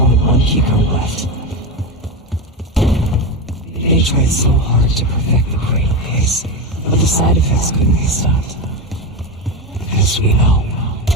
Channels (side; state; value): both; normal; correlation 0.17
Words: one keycode left. They tried so hard to perfect the cradle case, but the side effects couldn't be stopped. As we know,